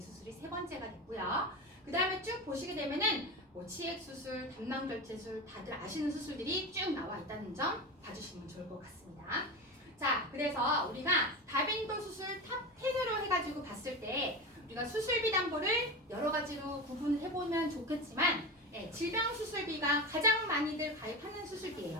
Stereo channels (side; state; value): both; normal; correlation 0.23